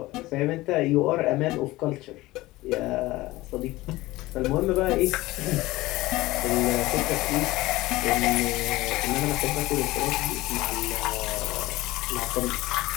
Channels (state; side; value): quieter; right; 18.9 dB